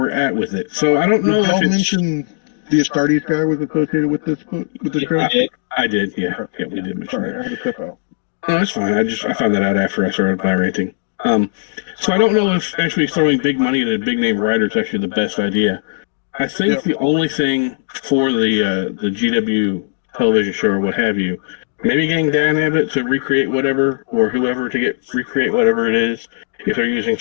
at with it. So I don't know. Did you mention the Astartes guy was associated with this book, with this show? I did. Yeah, we did mention that. I had to step out. No, that's fine. I found that out after I started by ranting. So I don't know if actually throwing big money at a big name writer is actually the best idea. I think the only thing for the GW television show or what have you maybe getting Dan Abbott to recreate whatever, or whoever to recreate whatever it is, if they're using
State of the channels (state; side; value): silent; right; digital silence